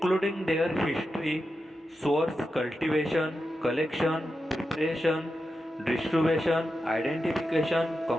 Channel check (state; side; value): normal; both; correlation 0.89